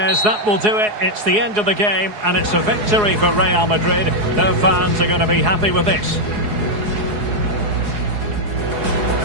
that will do it. It's the end of the game, and it's a victory for Real Madrid. Their fans are going to be happy with this.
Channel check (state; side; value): late; left; 4.8 ms